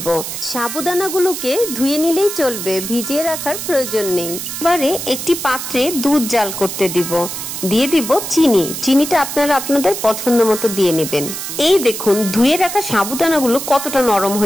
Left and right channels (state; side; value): noise; right; hiss, 6 dB below the sound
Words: সাবুদানাগুলোকে ধুয়ে নিলেই চলবে, ভিজিয়ে রাখার প্রয়োজন নেই। এবারে একটি পাত্রে দুধ জাল করতে দিব। দিয়ে দিব চিনি। চিনিটা আপনারা আপনাদের পছন্দ মতো দিয়ে নেবেন। এই দেখুন ধুয়ে রাখা সাবুদানাগুলো কতটা নরম